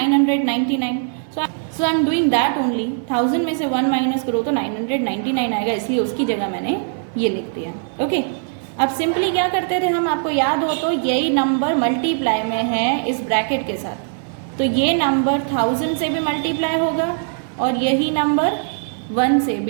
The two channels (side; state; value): left; silent; digital silence